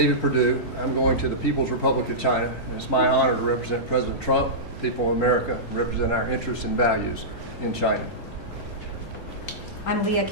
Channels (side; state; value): both; normal; correlation -0.16